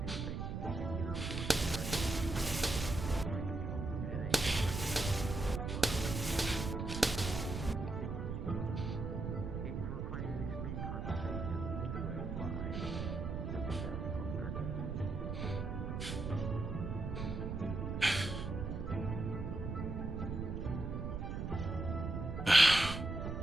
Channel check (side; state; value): right; noise; rumble, 3 dB below the sound